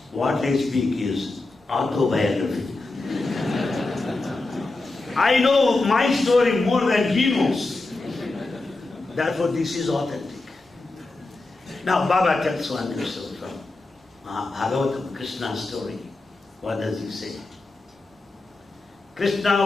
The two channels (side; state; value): right; quieter; 3.2 dB